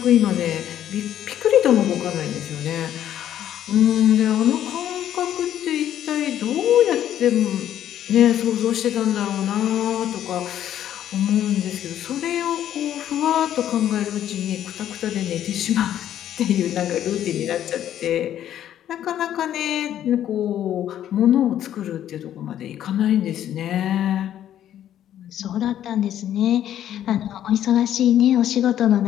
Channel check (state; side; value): quieter; right; 11.1 dB